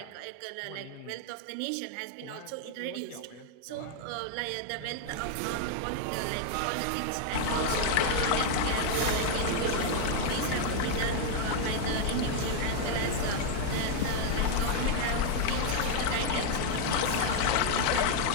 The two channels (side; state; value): both; different; correlation 0.00